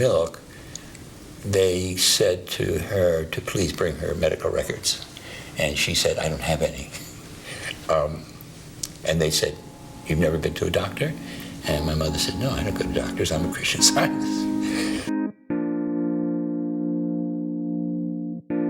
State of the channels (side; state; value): both; identical; correlation 1.00